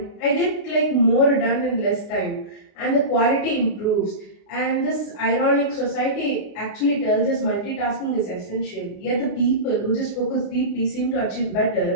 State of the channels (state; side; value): late; right; 33 ms